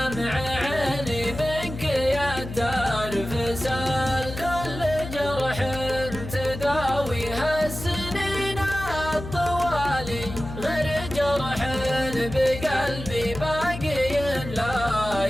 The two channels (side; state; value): left; noise; hum, 9 dB below the sound